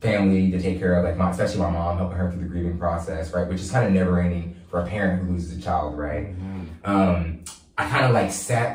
family to take care of, especially my mom, helping her through the grieving process, right, which is kind of never ending for a parent who loses a child, right? Mm-hmm. I kind of sat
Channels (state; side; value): identical; both; correlation 1.00